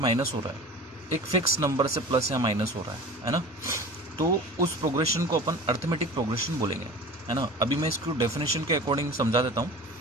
हो रहा है, एक फिक्स नंबर से प्लस या माइनस हो रहा है ना, तो उस प्रोग्रेशन को अपन अर्थमेटिक प्रोग्रेशन बोलेंगे, है ना. अभी मैं इसको डेफिनेशन के अकॉर्डिंग समझा देता हूँ.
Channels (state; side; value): normal; both; correlation 0.38